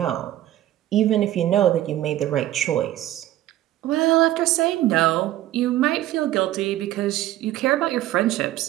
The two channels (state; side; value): quieter; left; 14.0 dB